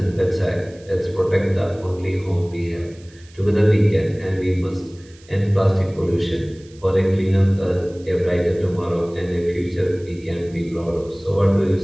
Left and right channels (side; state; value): right; noise; hiss, 27 dB below the sound